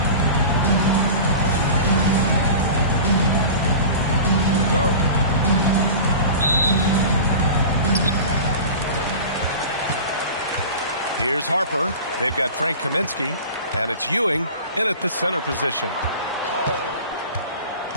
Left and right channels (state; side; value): inverted; both; correlation -0.35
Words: Here's Harper. They've got Frank Kaminsky, and it's Ewing in at the center position.